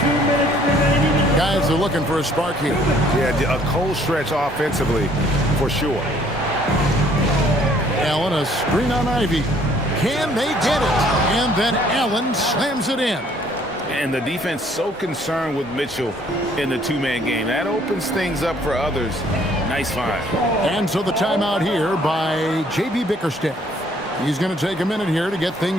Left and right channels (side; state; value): both; normal; correlation 0.61